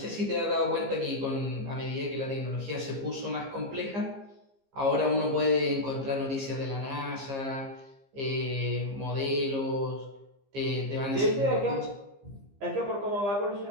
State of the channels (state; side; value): late; left; 15 ms